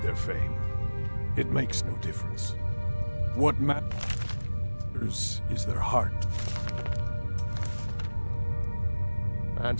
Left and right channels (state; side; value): inverted; both; correlation -1.00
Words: their fame. It makes no difference. What matters is their heart. And